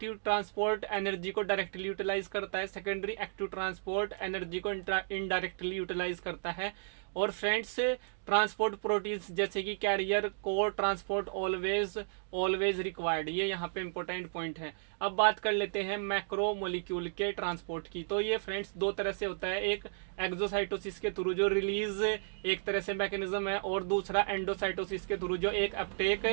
ट्रांसपोर्ट एनर्जी को डायरेक्टली यूटिलाइज करता है, सेकेंडरी एक्टिव ट्रांसपोर्ट एनर्जी को इनडायरेक्टली यूटिलाइज करता है। और फ्रेंड्स, ट्रांसपोर्ट प्रोटीन्स जैसे कि कैरियर को ट्रांसपोर्ट ऑलवेज रिक्वायर्ड, ये यहाँ पे इंपॉर्टेंट पॉइंट है। अब बात कर लेते हैं मैक्रो मॉलिक्यूल के ट्रांसपोर्ट की। तो ये फ्रेंड्स दो तरह से होता है, एक एक्सोसाइटोसिस के थ्रू जो रिलीज एक तरह से मैकेनिज्म है और दूसरा एंडोसाइटोसिस के थ्रू जो एक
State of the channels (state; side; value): silent; left; digital silence